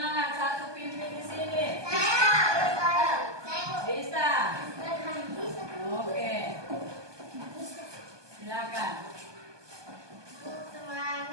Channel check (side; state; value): left; late; 1.2 ms